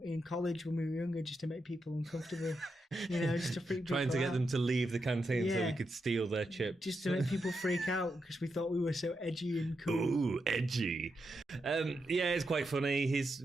in college when we were younger, just to make people uncomfortable. just to freak trying to get them to leave the canteen so we could steal their chips. Just to make people freak out because we thought we were so edgy and cool. Ooh, edgy. It's quite funny. He's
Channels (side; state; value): both; normal; correlation 0.85